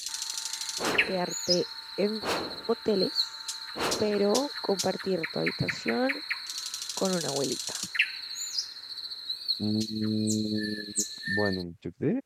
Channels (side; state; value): both; identical; correlation 1.00